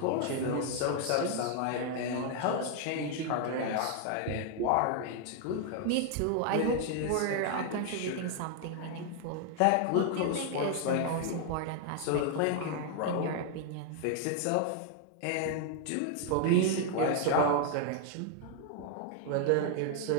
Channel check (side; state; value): both; different; correlation 0.00